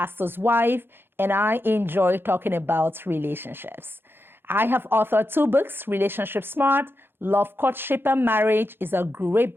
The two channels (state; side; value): late; left; 0.10 ms